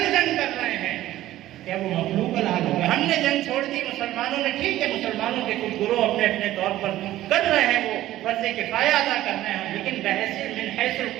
جنگ کر رہے ہیں، کیا وہ مخلوق الحال ہو گئے؟ ہم نے جنگ چھوڑ دی، مسلمانوں نے، ٹھیک ہے مسلمانوں کے کچھ گروہ اپنے اپنے طور پر کر رہے ہیں، وہ فرض کفایہ ادا کر رہے ہیں، لیکن بحیثیت من حیث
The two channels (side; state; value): left; quieter; 14.5 dB